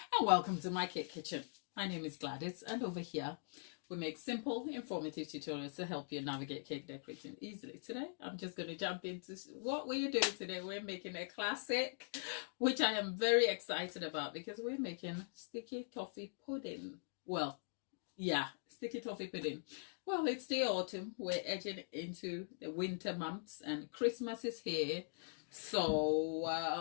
welcome to my cake kitchen. My name is Gladys, and over here we make simple, informative tutorials to help you navigate cake decorating easily. Today I'm just going to jump into what we're doing today. We're making a classic, which I am very excited about because we're making sticky toffee pudding. Well, yeah, sticky toffee pudding. Well, it's the autumn. We're edging into the winter months and Christmas is here. So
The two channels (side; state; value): right; silent; digital silence